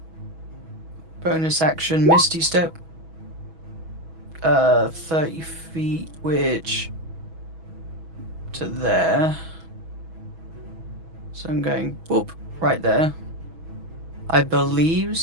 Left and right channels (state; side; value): late; left; 6.2 ms